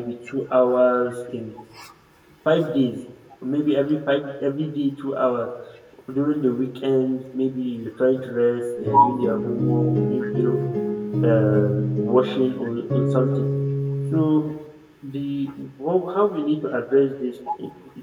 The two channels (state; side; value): identical; both; correlation 1.00